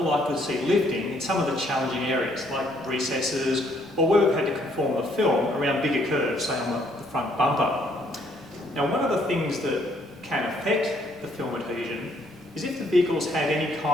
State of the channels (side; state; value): both; normal; correlation 0.67